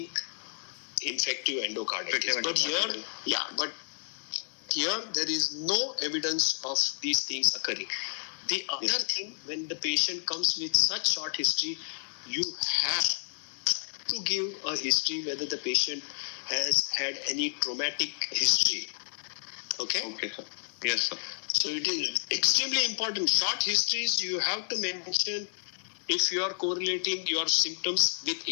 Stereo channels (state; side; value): silent; right; digital silence